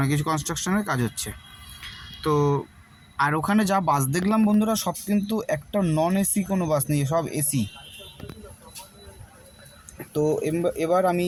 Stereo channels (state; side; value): identical; both; correlation 1.00